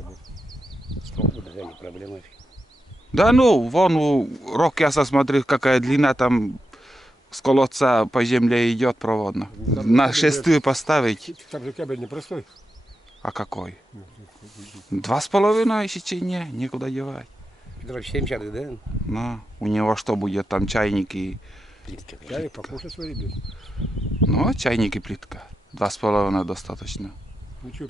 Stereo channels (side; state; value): both; normal; correlation 0.88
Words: будет. Стол будет, да, не проблема. Да ну, вон у Рокяса, смотри, какая длина там с колодца по земле идет проводно. На шестую поставить. Там же кабель непростой. А какой? Ну, 2,5 сечения, некуда девать. Петров 70, да? Ну, у него что будет, там чайник и... Плитка. чай покушать свари, блядь. Ну, чайник и плитка. 2,5 достаточно. Ну что,